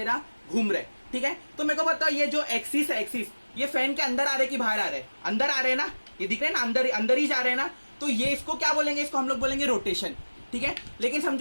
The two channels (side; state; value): both; inverted; correlation -1.00